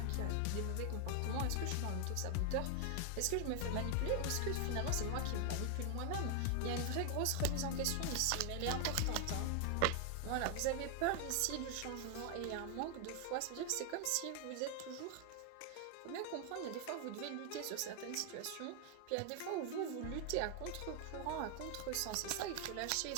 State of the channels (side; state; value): both; different; correlation 0.00